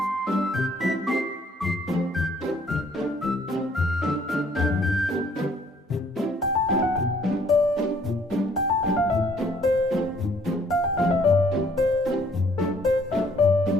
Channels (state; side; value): normal; both; correlation 0.62